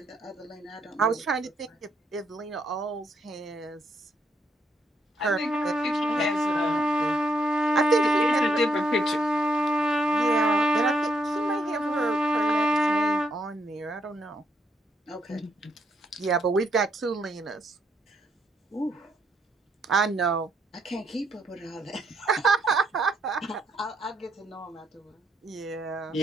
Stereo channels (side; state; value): both; normal; correlation 0.75